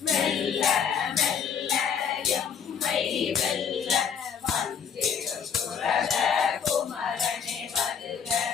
மெல்ல மெல்ல எம்மை வெல்ல வந்திடும் சுரத குமரனே வருக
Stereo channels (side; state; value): right; quieter; 7.2 dB